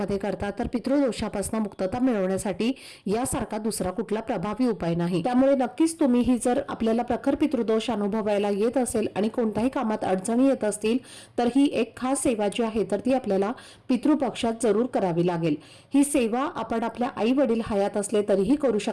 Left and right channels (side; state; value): both; identical; correlation 1.00